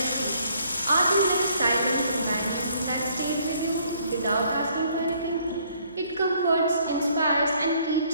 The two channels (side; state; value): both; inverted; correlation -0.64